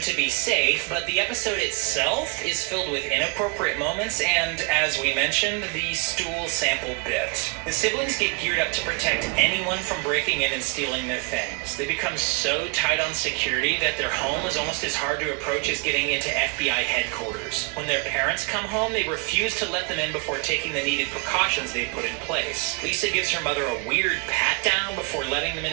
be safe, but the episode itself is filled with inappropriate moments and, as we mentioned, the stool sample bit. The siblings get geared up to protect protect anyone from breaking in and stealing their things. They become so tight on security that their home is almost as hard to approach as getting into FBI headquarters. When their parents come home, they refuse to let them in before taking the needed precautions they've put in place. Lisa gives her mother a weird pat down before letting them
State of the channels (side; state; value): left; quieter; 31.5 dB